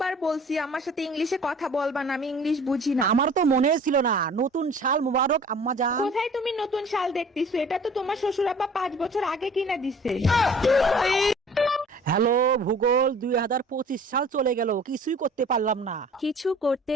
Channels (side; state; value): both; normal; correlation 0.48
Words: বলছি আমার সাথে ইংলিশে কথা বলবা না, আমি ইংলিশ বুঝি না। আমার তো মনে ছিল না। নতুন সাল মুবারক আম্মাজান। কোথায় তুমি নতুন শাল দেখতেছো? এটা তো তোমার শ্বশুর আব্বা 5 বছর আগে কিনা দিছে। হ্যালো ভূগোল, 2025 সাল চলে গেল, কিছুই করতে পারলাম না। কিছু করতে